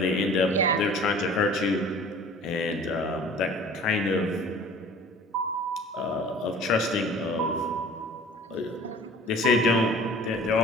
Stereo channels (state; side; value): normal; both; correlation 0.46